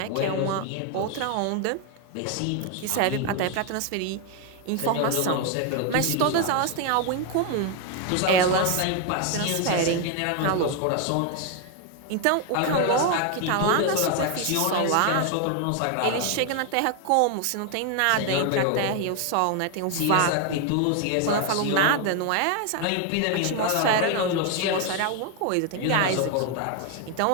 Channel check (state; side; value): different; both; correlation 0.01